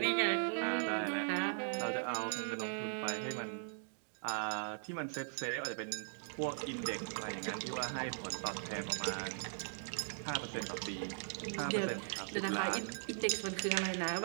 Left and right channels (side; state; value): left; silent; digital silence